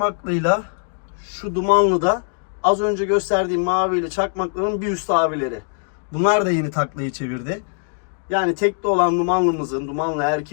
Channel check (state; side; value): silent; right; 65 dB below the other